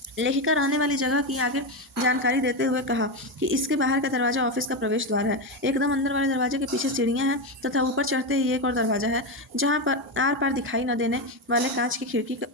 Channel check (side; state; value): both; normal; correlation 0.12